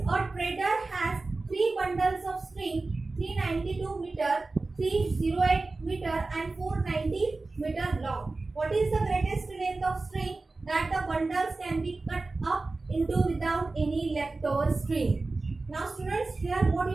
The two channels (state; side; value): quieter; left; 3.5 dB